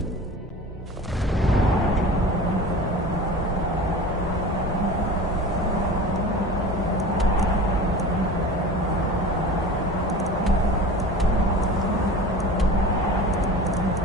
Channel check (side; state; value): both; normal; correlation 0.36